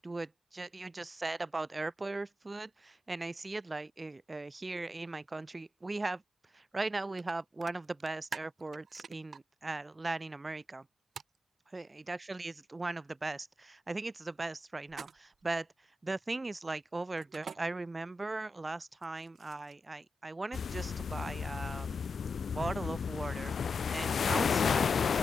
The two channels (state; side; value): normal; both; correlation 0.89